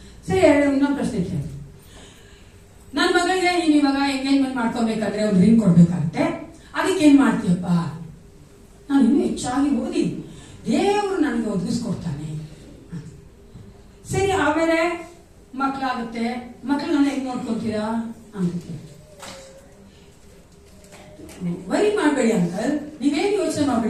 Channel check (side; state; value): both; identical; correlation 1.00